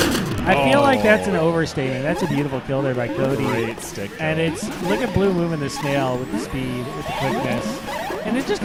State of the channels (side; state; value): both; identical; correlation 1.00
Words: I feel like that's an Oh. overstatement. That's a beautiful kill there by Cody. Great stick. And kill. it's, look at Blue moving the snail with the speed, with the quickness. And it just